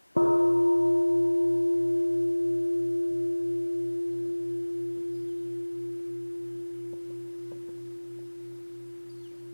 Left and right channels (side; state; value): both; inverted; correlation -1.00